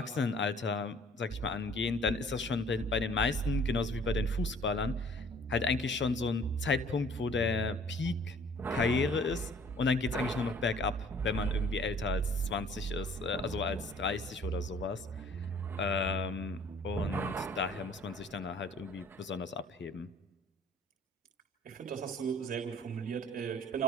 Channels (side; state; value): both; normal; correlation 0.54